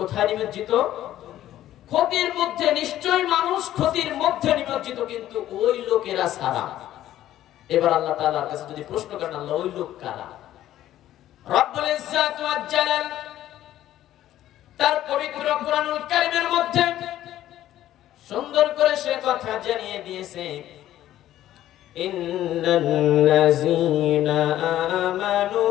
নিমজ্জিত? ক্ষতির মধ্যে। নিশ্চয়ই মানুষ ক্ষতির মধ্যে নিমজ্জিত, কিন্তু ওই লোকেরা ছাড়া। এবার আল্লাহ তাআলার কাছে যদি প্রশ্ন করেন, আল্লাহ ওই লোক কারা? রব্বুল ইজ্জত ওয়া জালাল তার পবিত্র কোরআনুল কারীমের মধ্যে সুন্দর করে সে কথা জানিয়ে দিয়েছে, ইন্নাল্লাযীনা আমানু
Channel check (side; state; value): right; quieter; 13.0 dB